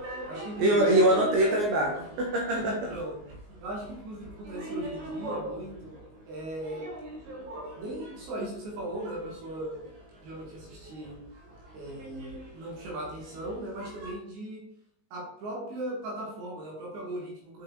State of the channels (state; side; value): late; left; 19 ms